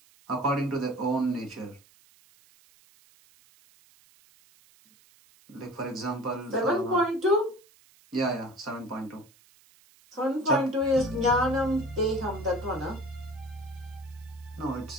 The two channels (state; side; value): noise; right; hiss, 29 dB below the sound